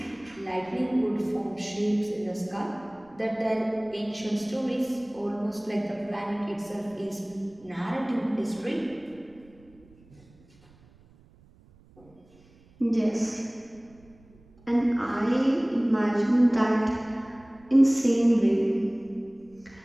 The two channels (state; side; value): noise; right; rumble, 28 dB below the sound